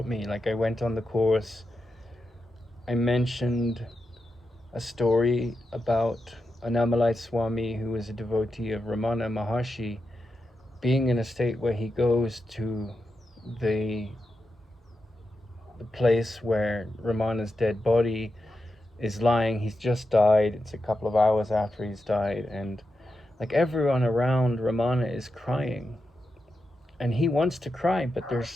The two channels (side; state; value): both; normal; correlation 0.88